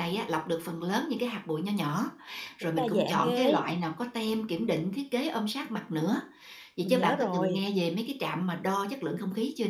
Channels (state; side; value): identical; both; correlation 1.00